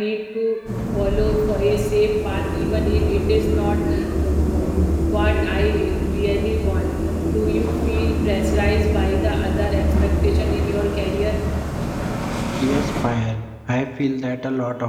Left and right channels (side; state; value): both; identical; correlation 1.00